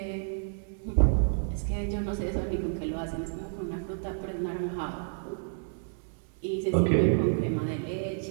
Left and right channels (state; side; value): silent; left; 58 dB below the other